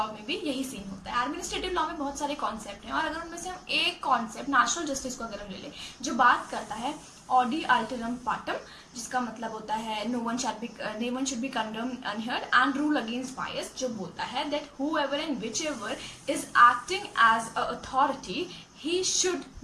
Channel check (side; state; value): both; identical; correlation 1.00